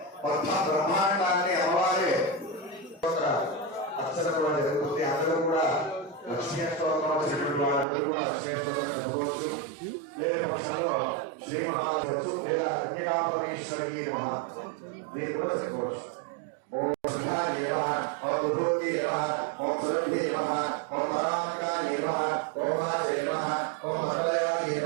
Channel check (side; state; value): left; drops out; at 7.9 s